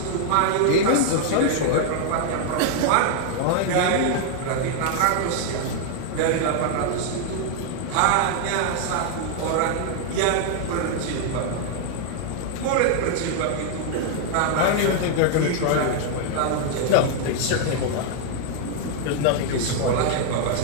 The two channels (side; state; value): both; different; correlation 0.00